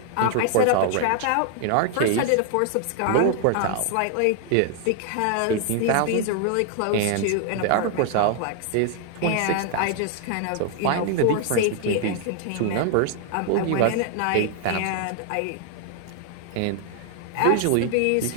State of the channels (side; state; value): both; different; correlation 0.00